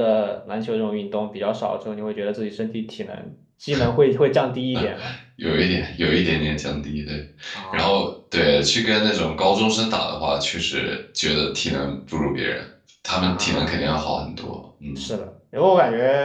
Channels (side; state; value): both; identical; correlation 1.00